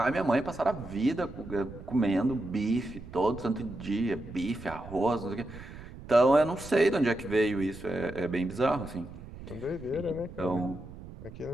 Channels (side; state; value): right; noise; rumble, 14 dB below the sound